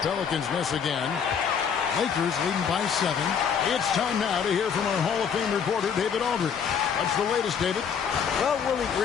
miss again. Lakers leading by 7. It's time now to hear from our Hall of Fame reporter, David Aldridge. What's the latest, David? Well, Willie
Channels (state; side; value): quieter; right; 7.1 dB